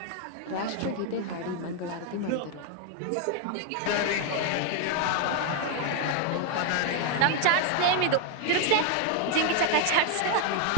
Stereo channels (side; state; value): both; different; correlation 0.01